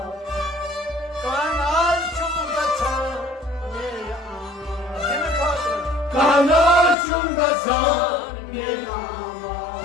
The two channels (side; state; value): right; drops out; at 7.0 s